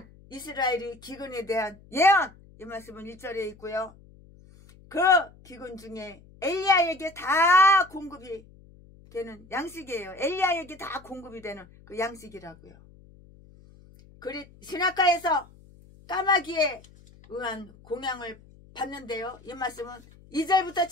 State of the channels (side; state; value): left; noise; hum, 24 dB below the sound